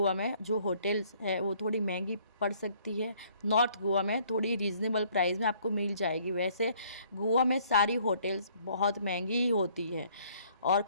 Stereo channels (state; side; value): inverted; both; correlation -0.61